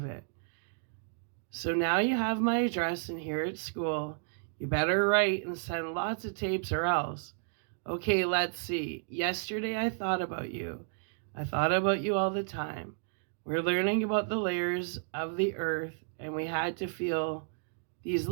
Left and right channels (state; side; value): silent; left; digital silence